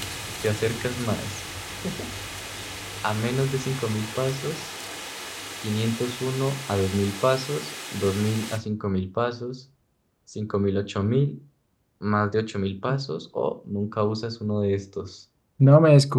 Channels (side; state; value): both; identical; correlation 1.00